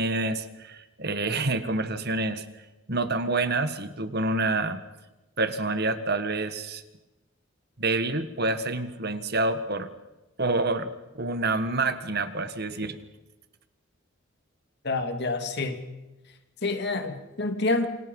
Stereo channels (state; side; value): normal; both; correlation 0.04